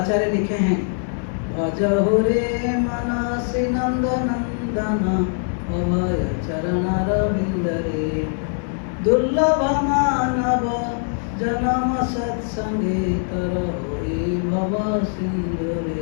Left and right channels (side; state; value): right; silent; 60 dB below the other